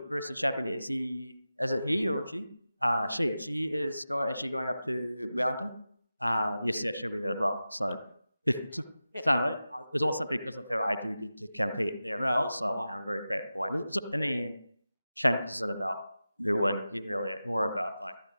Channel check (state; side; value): inverted; both; correlation -0.93